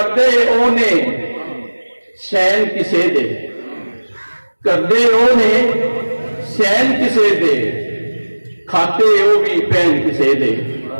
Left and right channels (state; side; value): inverted; both; correlation -1.00